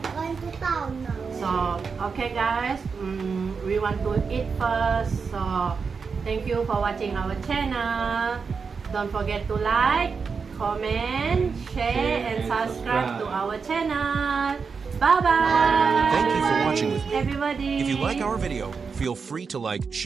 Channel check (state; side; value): quieter; left; 5.4 dB